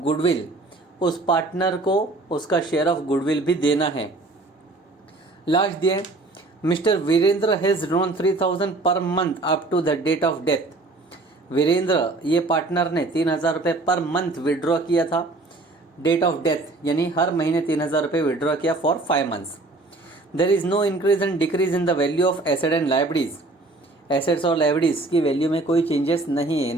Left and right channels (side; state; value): left; quieter; 3.1 dB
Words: उस पार्टनर को उसका शेयर ऑफ गुडविल भी देना है। लास्ट दिया mister Virendra has drawn 3,000 per month up to the date of death. Virendra ये पार्टनर ने 3,000 रुपये पर मंथ विड्रॉ किया था डेट ऑफ डेथ, यानी हर महीने 3,000 रुपये विड्रॉ किया for 5 months. There is no increase and decrease in the value of asset and liabilities. Assets और लाइबिलिटीज की वैल्यू में कोई चेंजेस नहीं है,